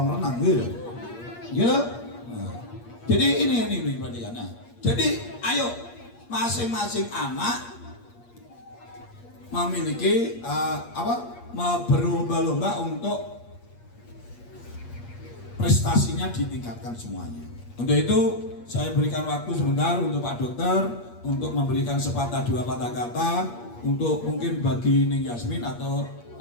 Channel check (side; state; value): right; late; 8.5 ms